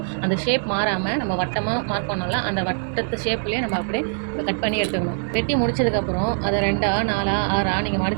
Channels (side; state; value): left; silent; digital silence